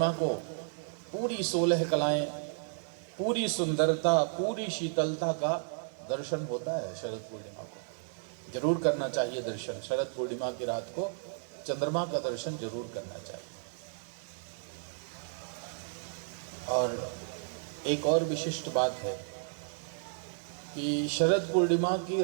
को पूरी 16 कलाएं, पूरी सुंदरता, पूरी शीतलता का दर्शन होता है। शरद पूर्णिमा को जरूर करना चाहिए दर्शन। शरद पूर्णिमा की रात को चंद्रमा का दर्शन जरूर करना चाहिए। और एक और विशिष्ट बात है कि शरद पूर्णिमा की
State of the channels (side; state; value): left; silent; digital silence